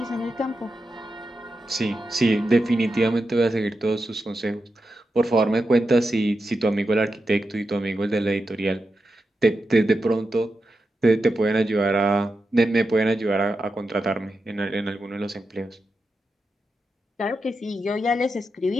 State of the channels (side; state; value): both; normal; correlation 0.89